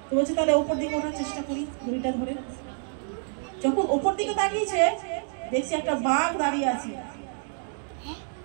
তো বলছে তাহলে ওপর দিকে ওঠার চেষ্টা করি, দড়িটা ধরে। যখন ওপর দিকে তাকিয়েছে দেখছে একটা বাঘ দাঁড়িয়ে আছে,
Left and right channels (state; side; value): silent; left; 60 dB below the other